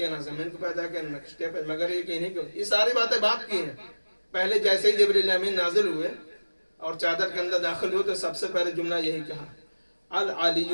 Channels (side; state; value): both; inverted; correlation -1.00